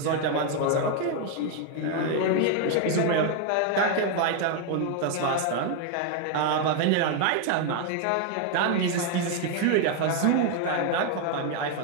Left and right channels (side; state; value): both; different; correlation 0.01